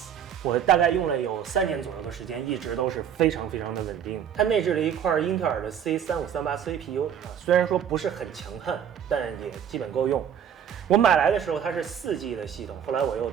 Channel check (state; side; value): quieter; left; 8.7 dB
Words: 我大概用了有3年左右的时间，一直都是非常的稳定。它内置了一块英特尔的 C3538 CPU 虽然说不是很强悍，但也基本够用。我买来的时候它是4G 的系统，后来我又